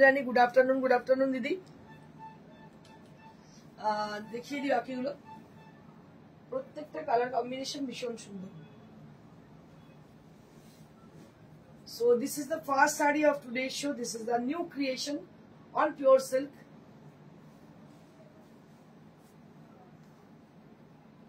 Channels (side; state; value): both; identical; correlation 1.00